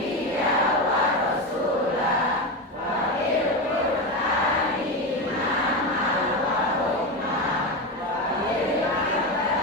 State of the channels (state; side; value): normal; both; correlation 0.17